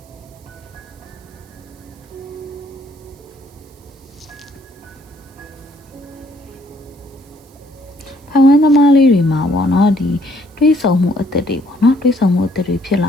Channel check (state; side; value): noise; right; hiss, 29 dB below the sound